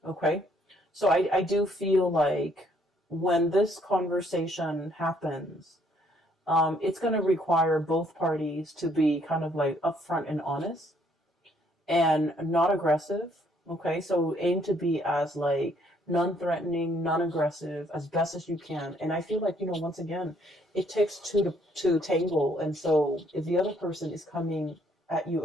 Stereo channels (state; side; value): normal; both; correlation 0.66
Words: Okay, so I do feel like when this conversation happens, it's going to require both parties to be kind of like upfront and honest and not aggressive. Okay, so aim to be as like non-threatening, non-aggressive as best as you can. And I feel like, once again, it takes two to tangle. And so if the other person is coming at you